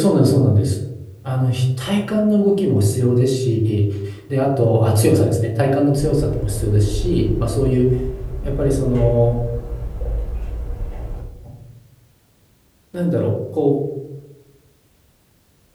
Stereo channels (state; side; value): identical; both; correlation 1.00